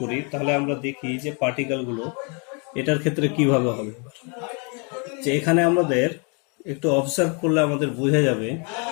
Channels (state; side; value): quieter; right; 35.6 dB